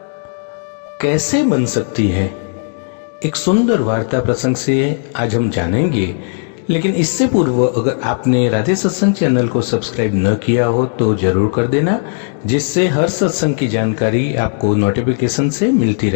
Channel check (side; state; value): right; silent; 62 dB below the other